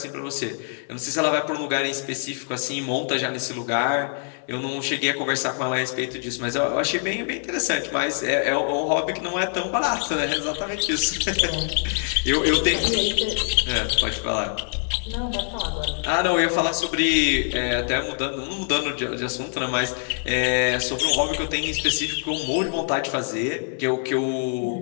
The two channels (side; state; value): right; silent; 56 dB below the other